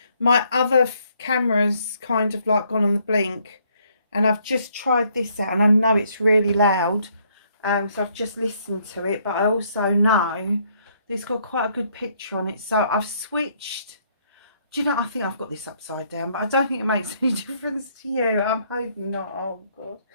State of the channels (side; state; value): both; inverted; correlation -0.69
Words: My other camera's kind of like gone on the blink, and I've just tried this out, and I know it's really loud, so I've just listened to it, but I also know it's got quite a good picture on it, so I've switched. Do you know, I think I've got this upside down, but I don't think it makes any difference to you. I'm hoping not. Oh God.